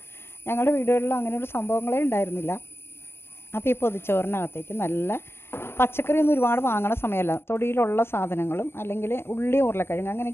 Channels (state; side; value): late; right; 0.11 ms